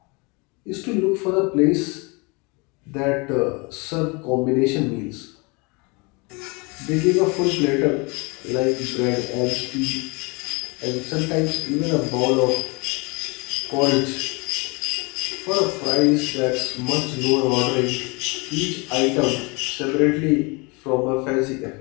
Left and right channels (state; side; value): quieter; right; 28.8 dB